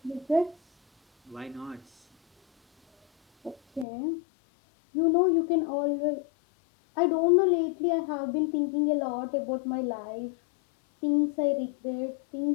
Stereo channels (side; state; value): right; drops out; at 3.9 s